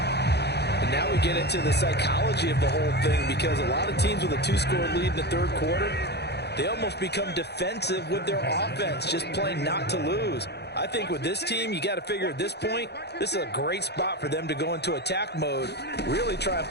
And now we get into the psychology of the whole thing, because a lot of teams with a 2-score lead in the third quarter, they almost become defensive with their offense, just playing not to lose. I think with this team, you got to figure at this point, this is a great spot for them to go into attack mode, really try and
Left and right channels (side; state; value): right; late; 0.48 ms